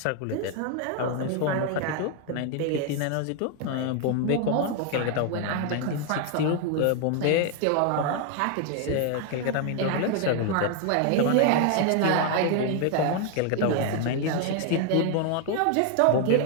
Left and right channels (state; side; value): different; both; correlation 0.00